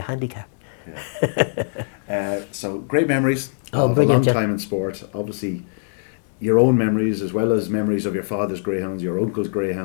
handicap. Yeah. So great memories of a long time in sport. Obviously, your own memories as well as memories of your father's greyhounds, your uncle's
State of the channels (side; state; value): right; silent; 64 dB below the other